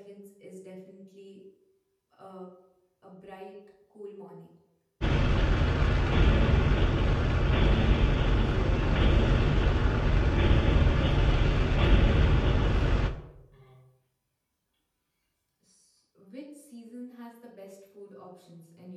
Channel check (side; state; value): both; identical; correlation 1.00